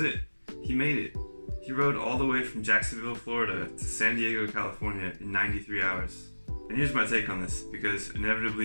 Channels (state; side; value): inverted; both; correlation -1.00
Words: it. He made it. He rode all the way from Jacksonville, Florida to San Diego, California in 93 hours. And here's my take on this, because